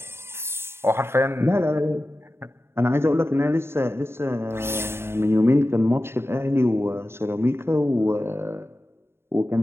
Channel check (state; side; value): late; left; 0.12 ms